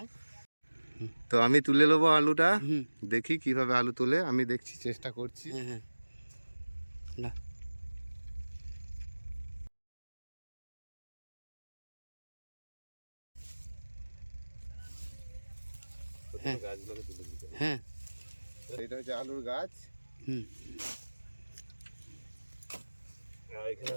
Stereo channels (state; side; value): inverted; both; correlation -1.00